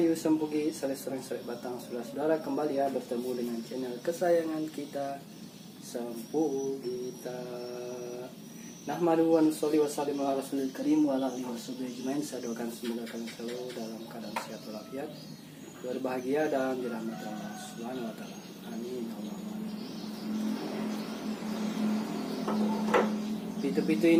sempugi? Sering batang saudara kembali ya bertemu dengan channel kesayangan kita Sempugita. Nahmadu wa nusolli wa sallim ala rasulil karim wa ala alihi washabihi ajmain. Saya doakan semoga kalian selalu dalam keadaan sehat walafiat, berbahagia dan dirahmati Allah Subhanahu wa taala. Amin. Pitu-pitu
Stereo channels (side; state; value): both; identical; correlation 1.00